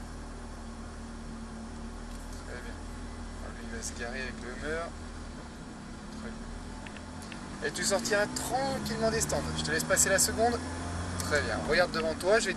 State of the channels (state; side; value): identical; both; correlation 1.00